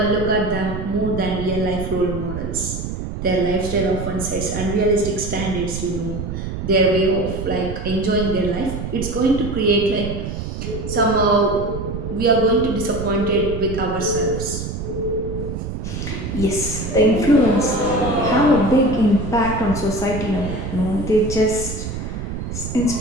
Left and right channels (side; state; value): right; noise; rumble, 6 dB below the sound